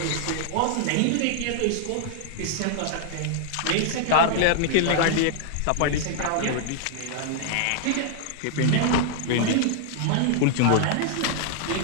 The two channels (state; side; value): different; both; correlation 0.00